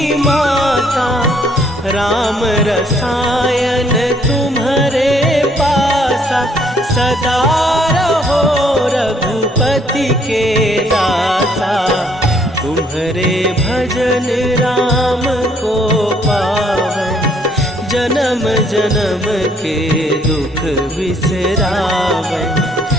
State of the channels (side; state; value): both; normal; correlation 0.65